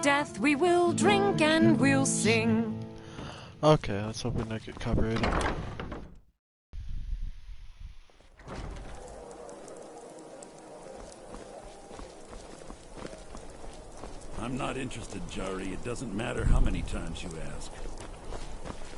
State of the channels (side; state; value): both; identical; correlation 1.00